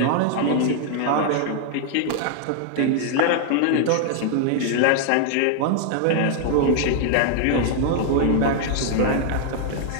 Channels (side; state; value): both; different; correlation 0.00